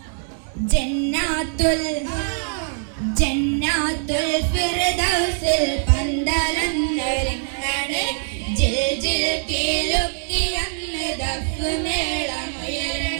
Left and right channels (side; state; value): left; silent; digital silence